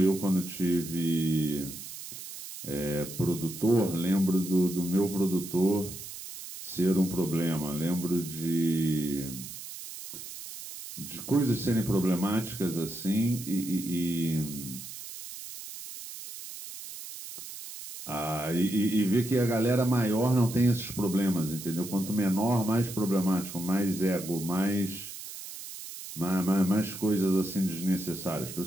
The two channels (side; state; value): right; noise; hiss, 11 dB below the sound